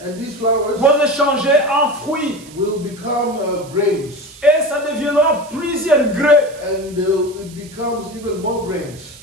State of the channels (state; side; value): noise; right; hiss, 21 dB below the sound